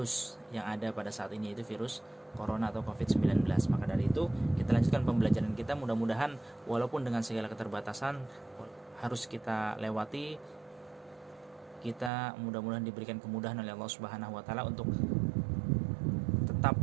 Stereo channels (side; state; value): left; drops out; at 12.1 s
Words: yang ada pada saat ini, yaitu virus corona atau COVID-19. Maka dari itu kita lanjutkan pembelajaran kita, mudah-mudahan walaupun dengan segala keterbatasan harus kita lewati, kita mudah-mudahan diberikan kemudahan oleh Allah Subhanahu wa taala untuk tetap